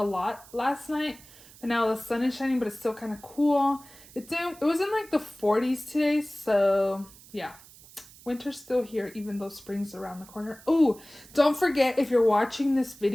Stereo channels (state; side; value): noise; right; hiss, 22 dB below the sound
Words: lot last night, and now the sun is shining, but it's still kind of cool. It was in like the 40s today, so yeah. Winter's still here, even though spring's around the corner. Oh, don't forget, if you're watching this